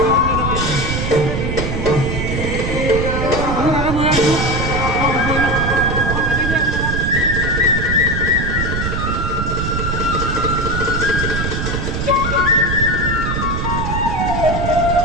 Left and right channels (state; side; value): noise; right; rumble, 2 dB below the sound